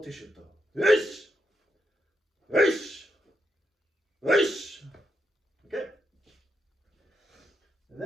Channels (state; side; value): normal; both; correlation 0.82